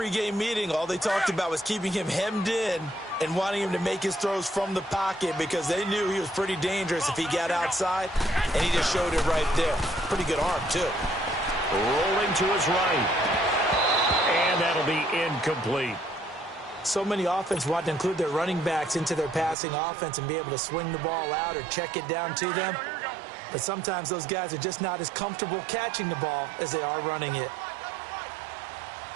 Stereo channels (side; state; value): left; drops out; at 19.6 s